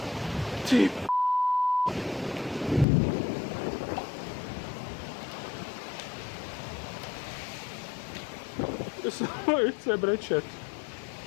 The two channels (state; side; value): drops out; right; at 2.9 s